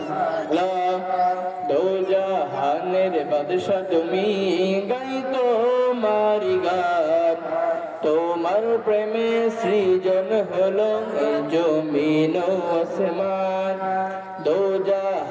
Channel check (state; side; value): identical; both; correlation 1.00